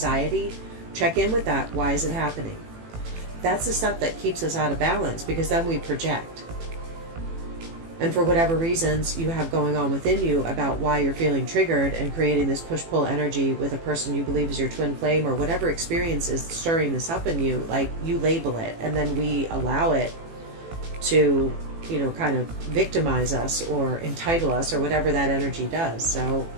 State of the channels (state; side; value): late; left; 18 ms